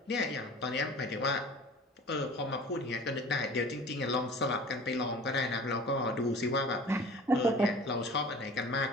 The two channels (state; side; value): normal; both; correlation 0.43